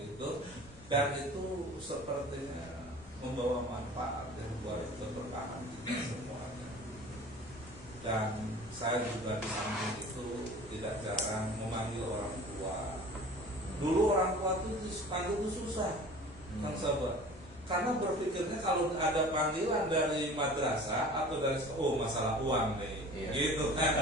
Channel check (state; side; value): noise; left; rumble, 21 dB below the sound